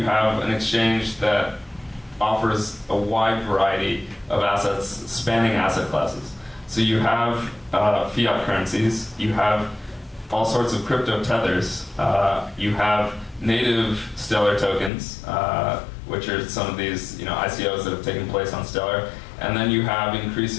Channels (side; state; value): right; drops out; at 14.9 s